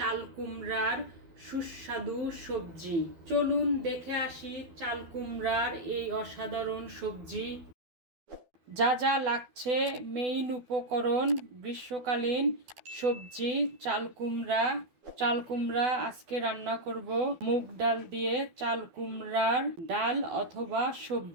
কুমড়ার সুস্বাদু সবজি। চলুন দেখে আসি চাল কুমড়ার এই অসাধারণ সবজি। যা যা লাগছে মেইন উপকরণ: গ্রীষ্মকালীন সবজি চাল কুমড়া। চাল কুমড়া আজকে রান্না করব মুগ ডাল দিয়ে। চাল কুমড়ার ডাল অথবা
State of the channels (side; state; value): left; late; 12 ms